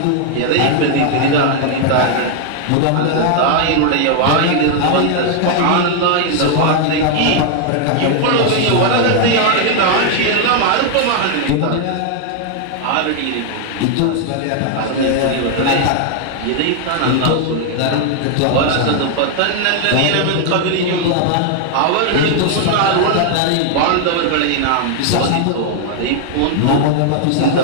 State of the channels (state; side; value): different; both; correlation 0.00